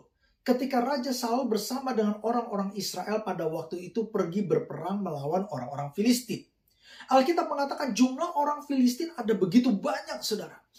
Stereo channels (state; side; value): identical; both; correlation 1.00